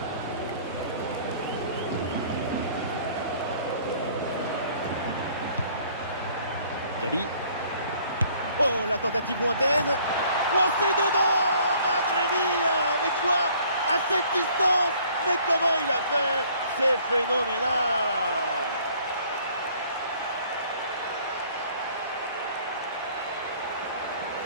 Gabi. Oh, la tentative lointaine. Oh, c'est dedans, Madre mia. Mais quoi? À cette distance? Mais comment il a fait? C'est phénoménal.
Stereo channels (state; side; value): inverted; both; correlation -0.57